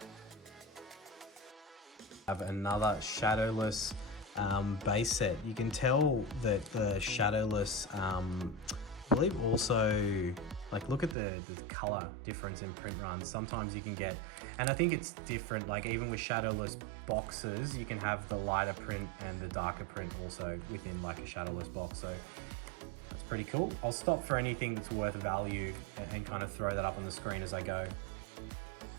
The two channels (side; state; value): left; drops out; at 11.2 s